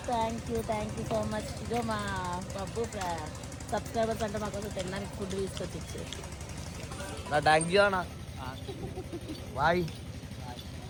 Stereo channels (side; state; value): both; identical; correlation 1.00